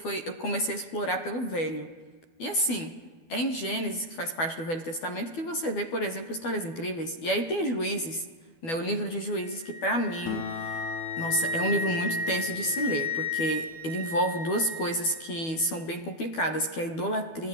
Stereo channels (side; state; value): right; late; 12 ms